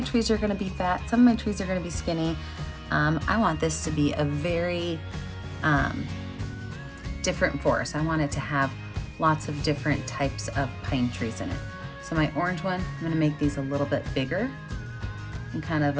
trees are gonna be fat, some of my trees are gonna be skinny. I want this to be a very different forest. I want it to have lots of different types of pine trees in it. So my orange one, I'm gonna make these a little bit bigger and kind of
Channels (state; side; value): identical; both; correlation 1.00